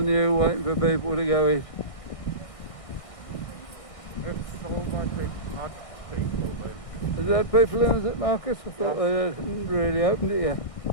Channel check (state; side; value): late; right; 1.6 ms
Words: new, waiting for people to go in. It's already had people in. Has that people in, is it, Marcus? I thought they hadn't really opened it yet.